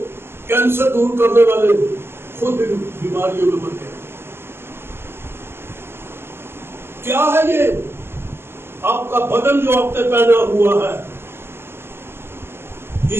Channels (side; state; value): left; late; 0.12 ms